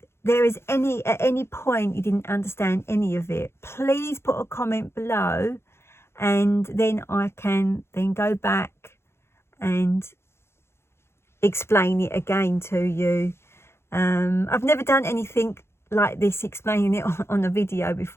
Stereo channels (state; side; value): late; right; 0.12 ms